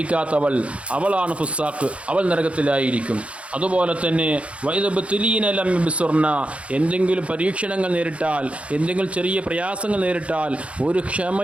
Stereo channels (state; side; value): late; left; 0.062 ms